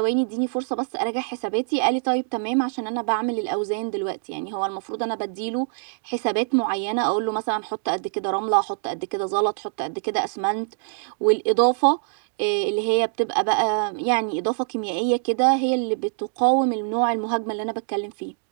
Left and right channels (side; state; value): left; silent; digital silence